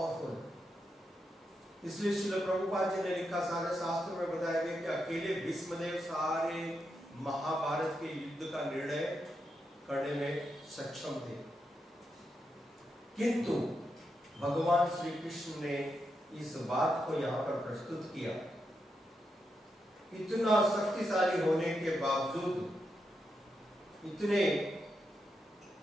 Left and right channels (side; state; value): both; normal; correlation 0.84